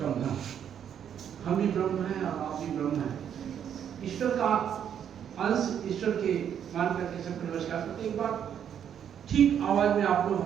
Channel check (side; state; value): left; quieter; 8.9 dB